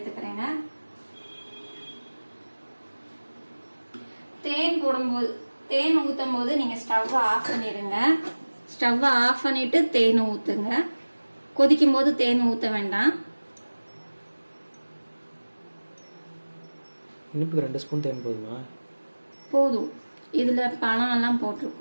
தேன் ஊத்தும் போது நீங்க ஸ்டவ் ஆஃப் பண்ணிடுங்க. ஸ்டவ் ஆஃப் பண்ணிட்டு தேன் ஊத்துங்க. கொதிக்கும் போது தேன் ஊத்த வேண்டாம். இனிப்புக்கு 2 ஸ்பூன் தேன் போதுமா? போதும். இதுல பழம் எல்லாம்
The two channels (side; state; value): both; inverted; correlation -1.00